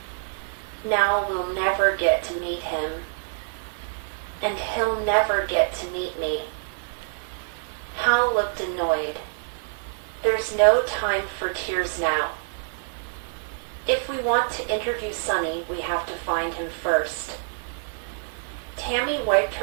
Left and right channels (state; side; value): silent; left; digital silence